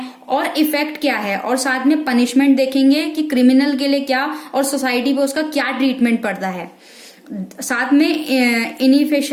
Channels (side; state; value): both; identical; correlation 1.00